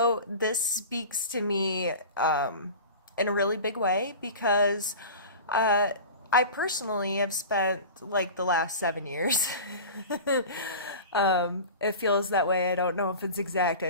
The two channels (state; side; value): inverted; both; correlation -0.34